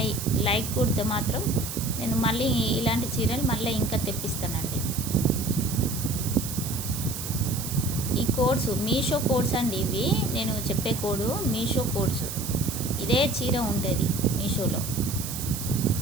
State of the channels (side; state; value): right; noise; hiss, 7 dB below the sound